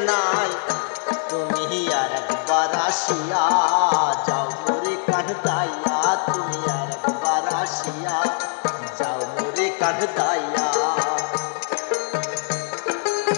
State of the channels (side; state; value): right; silent; 64 dB below the other